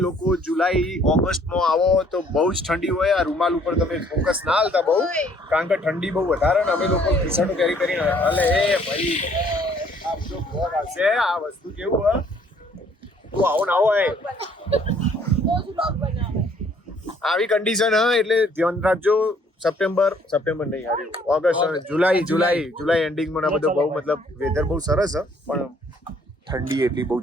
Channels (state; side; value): normal; both; correlation 0.62